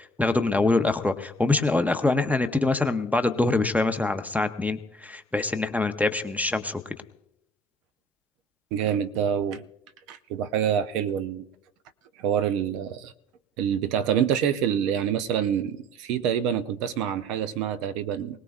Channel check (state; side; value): normal; both; correlation 0.51